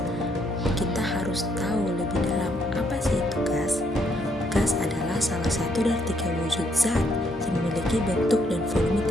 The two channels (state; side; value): normal; both; correlation 0.72